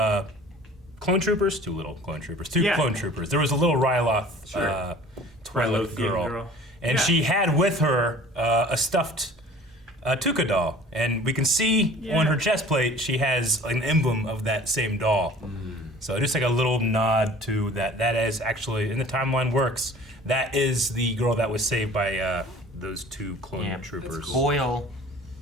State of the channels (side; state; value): both; normal; correlation 0.46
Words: clone troopers? Two clone troopers. There was a little Ryloth Twi'lek girl. And she had with her a stuffed Tuca doll. And we can see on her chest plate, she has an emblem of that same doll. So just like a little nod to that. That is actually, in the timeline works, that is the girl that was saved by those two clone troopers. Cool. Boyle,